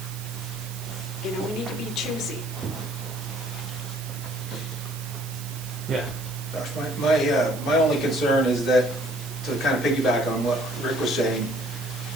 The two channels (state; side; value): noise; right; hiss, 13 dB below the sound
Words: we need to be choosy. Yeah. Gosh, my only concern is that, to kind of piggyback on what Rick was saying,